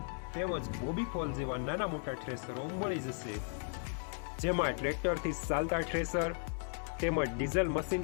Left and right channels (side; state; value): right; silent; 54 dB below the other